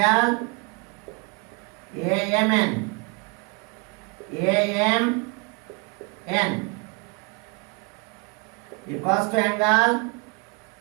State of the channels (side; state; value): left; quieter; 31.3 dB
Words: AMN equals to angle